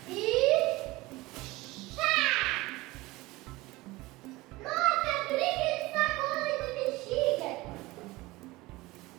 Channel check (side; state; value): left; quieter; 20.4 dB